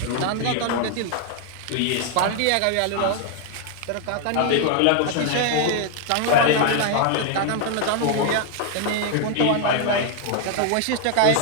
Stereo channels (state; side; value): different; both; correlation 0.00